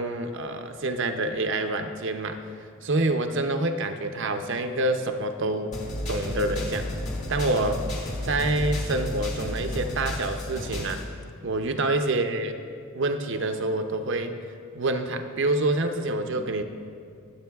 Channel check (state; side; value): normal; both; correlation 0.16